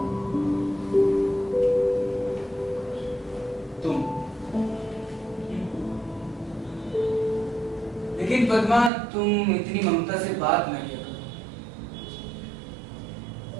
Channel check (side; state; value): left; drops out; at 8.9 s